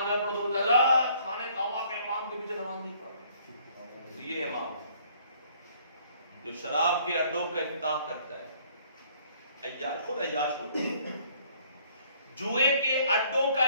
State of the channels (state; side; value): inverted; both; correlation -0.61